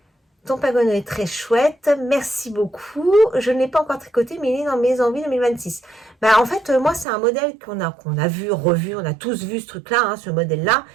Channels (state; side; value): drops out; left; at 7.1 s